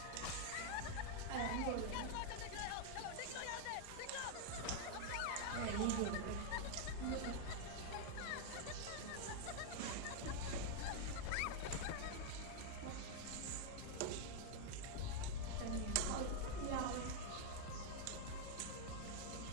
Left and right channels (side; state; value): both; different; correlation 0.00